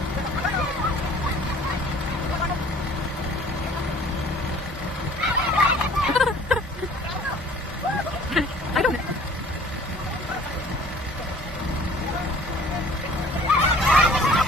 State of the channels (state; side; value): normal; both; correlation 0.51